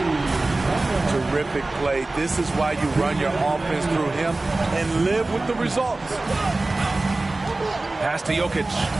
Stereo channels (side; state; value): left; quieter; 3.0 dB